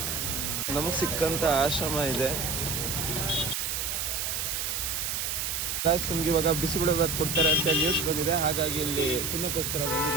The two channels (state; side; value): noise; right; hiss, 1 dB below the sound